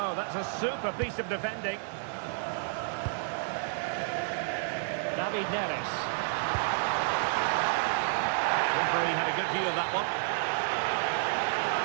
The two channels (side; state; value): left; silent; 58 dB below the other